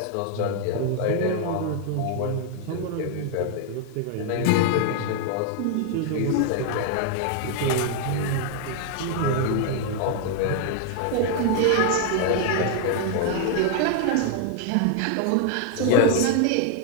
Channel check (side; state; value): both; different; correlation 0.00